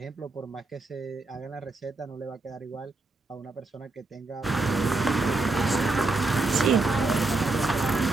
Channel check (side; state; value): left; quieter; 3.3 dB